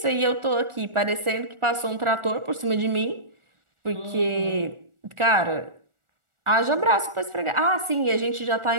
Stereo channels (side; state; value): left; late; 1.4 ms